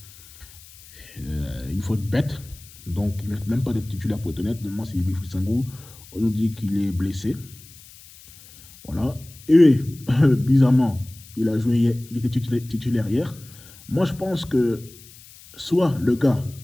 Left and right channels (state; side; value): noise; left; hiss, 21 dB below the sound